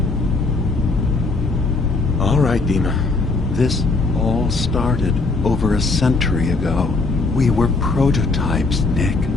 All right, Dima. This all started over a century ago. We were prototypes, Nick.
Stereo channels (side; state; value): right; quieter; 3.7 dB